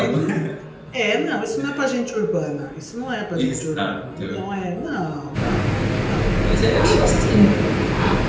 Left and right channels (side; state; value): both; identical; correlation 1.00